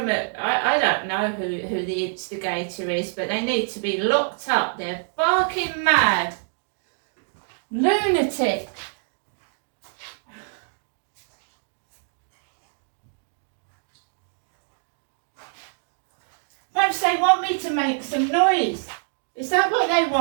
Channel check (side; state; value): left; silent; digital silence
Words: I don't know who the instigator is, but they need to be locked up. They're barking mad. Lunatic. Perhaps they want me to make some noise. Is that what they